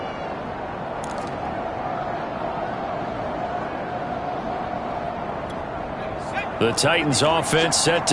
The Titans offense set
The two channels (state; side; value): identical; both; correlation 1.00